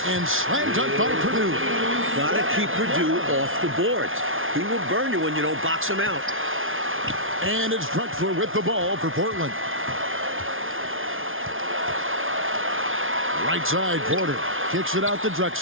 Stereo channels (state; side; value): late; left; 0.59 ms